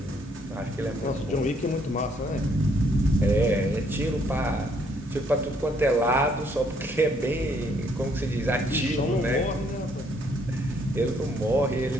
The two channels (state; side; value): normal; both; correlation 0.68